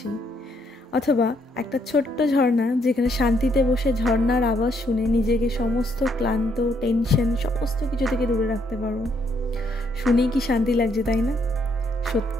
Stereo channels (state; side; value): normal; both; correlation 0.72